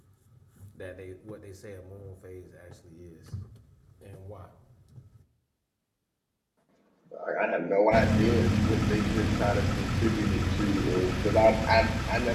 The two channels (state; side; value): identical; both; correlation 1.00